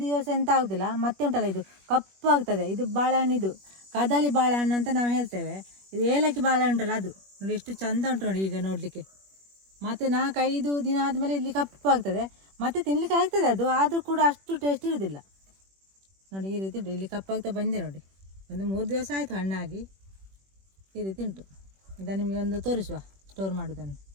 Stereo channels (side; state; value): left; late; 21 ms